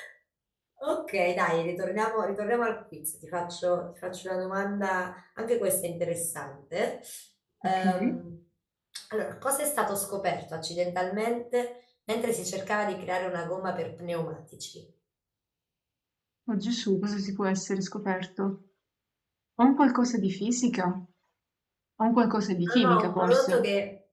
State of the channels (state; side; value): identical; both; correlation 1.00